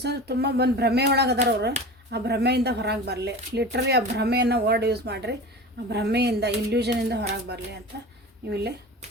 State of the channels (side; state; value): both; normal; correlation 0.33